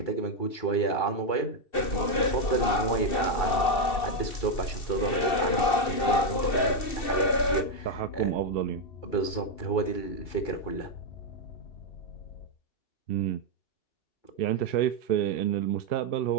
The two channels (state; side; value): late; right; 2.7 ms